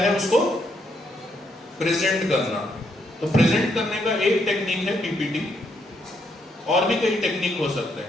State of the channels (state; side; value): normal; both; correlation 0.75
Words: है, उसको प्रेजेंट करना। तो प्रेजेंट करने का एक टेक्निक है पीपीटी, और भी कई टेक्निक हो सकते